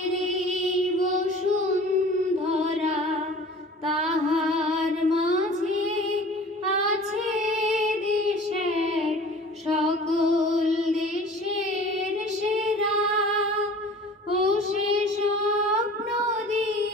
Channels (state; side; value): normal; both; correlation 0.44